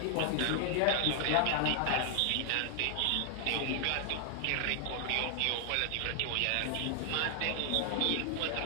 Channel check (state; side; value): different; both; correlation 0.00